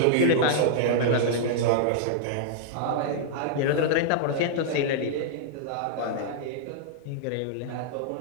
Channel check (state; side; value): different; both; correlation -0.02